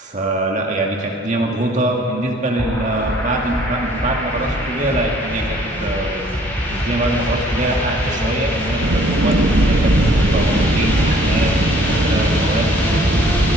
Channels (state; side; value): normal; both; correlation 0.58